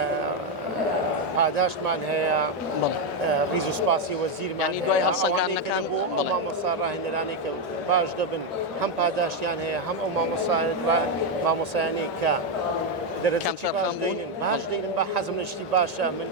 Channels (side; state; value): both; normal; correlation 0.04